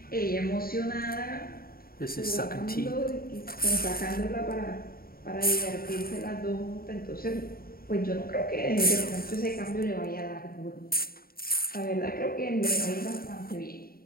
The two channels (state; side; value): late; right; 0.43 ms